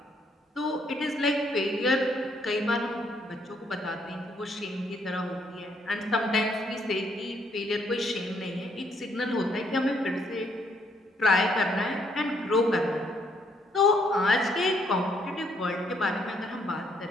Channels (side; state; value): both; normal; correlation 0.70